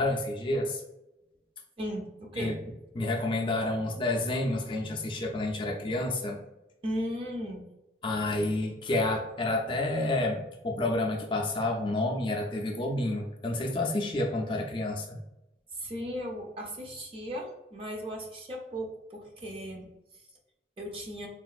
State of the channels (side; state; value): both; normal; correlation 0.51